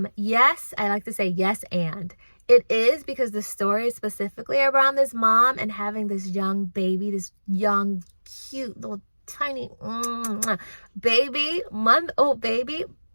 Yes, I like to say yes and. It is because the story is specifically around this mom and having this young baby, this young, cute, little tiny baby, month-old baby.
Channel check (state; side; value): inverted; both; correlation -1.00